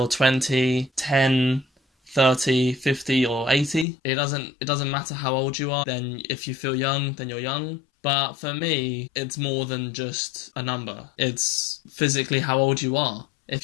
20, 10, 30, 50 or 80. It doesn't matter how old you are. Then if you feel young, then you're young. But for me, it's more than just a number. It's physically how old you are.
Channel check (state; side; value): drops out; right; at 3.9 s